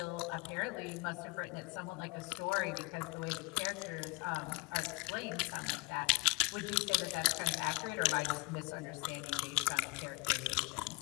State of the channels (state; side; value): quieter; right; 27.0 dB